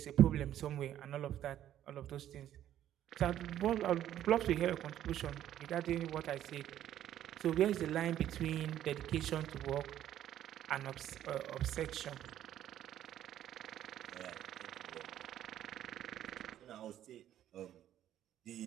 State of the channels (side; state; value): left; quieter; 11.7 dB